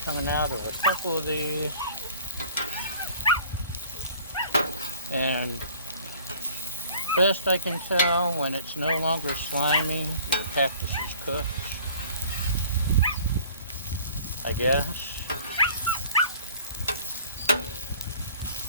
coming out of a couple of these. And best I can tell, when it's no longer slimy, your cactus is cooked, I guess.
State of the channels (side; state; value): both; inverted; correlation -0.49